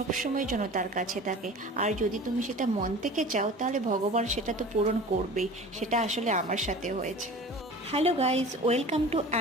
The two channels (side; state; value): both; normal; correlation 0.39